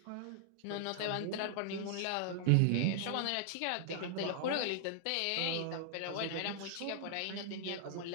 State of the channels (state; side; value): different; both; correlation -0.01